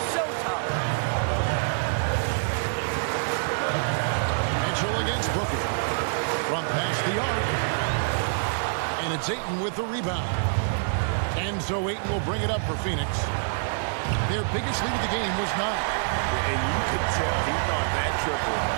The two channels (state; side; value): silent; left; digital silence